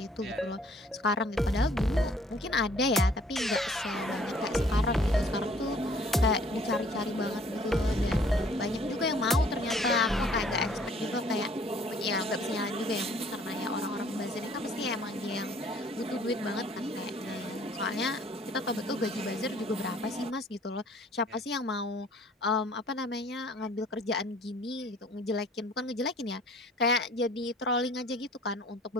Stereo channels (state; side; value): normal; both; correlation 0.57